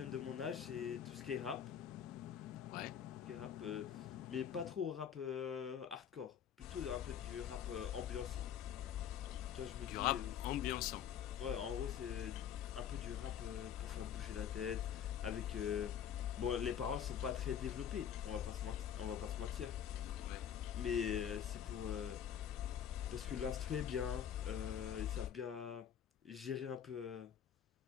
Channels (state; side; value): quieter; right; 9.0 dB